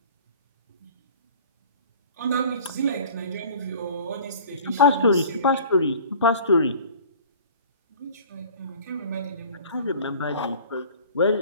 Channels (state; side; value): inverted; both; correlation -0.46